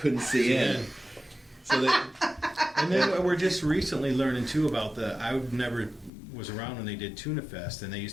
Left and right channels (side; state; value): right; drops out; at 6.1 s